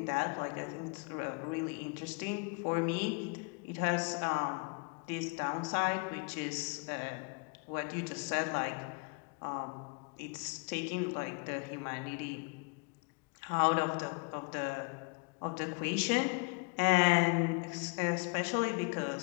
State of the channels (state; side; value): quieter; right; 33.1 dB